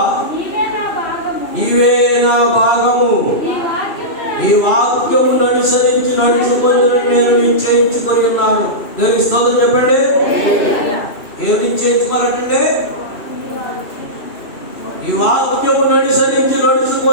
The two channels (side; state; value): right; late; 2.6 ms